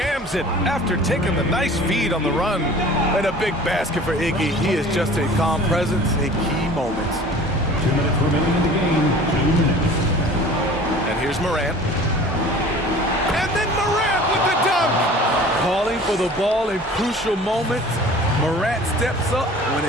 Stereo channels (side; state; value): both; normal; correlation 0.44